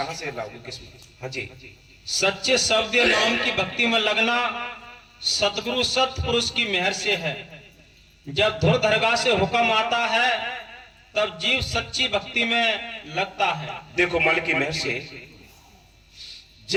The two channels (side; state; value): both; identical; correlation 1.00